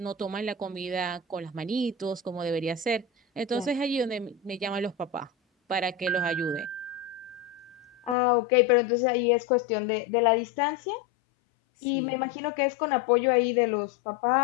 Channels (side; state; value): right; drops out; at 8.2 s